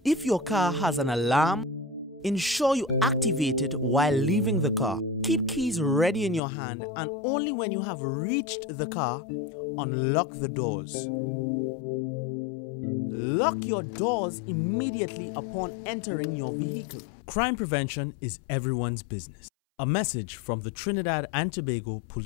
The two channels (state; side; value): drops out; right; at 6.4 s